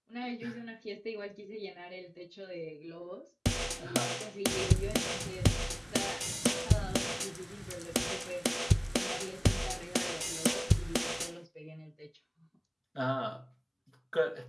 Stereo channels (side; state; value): both; identical; correlation 1.00